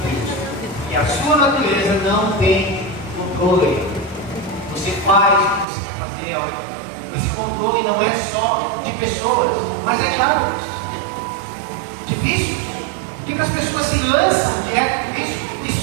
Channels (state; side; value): drops out; left; at 5.7 s